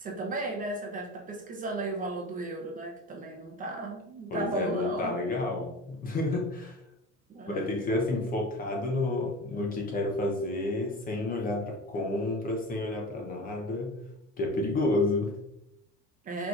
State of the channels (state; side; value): normal; both; correlation 0.34